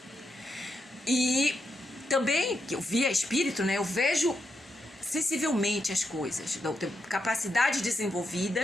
E também, que eu via espírito, né? Eu vejo sensivelmente as coisas. Eu tenho capacidades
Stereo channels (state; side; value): normal; both; correlation 0.83